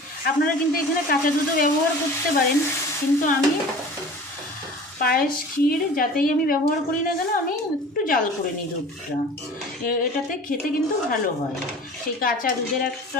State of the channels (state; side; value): normal; both; correlation 0.41